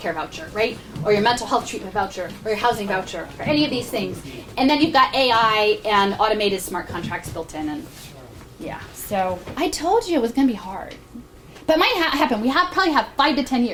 voucher, right? Or your mental health treatment voucher, or your housing voucher, or any of these things. And then you've got AI and automated smart contracts built in, and yeah. So I told you it was going to be hard. But it might happen. We probably have 5 to 10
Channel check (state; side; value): identical; both; correlation 1.00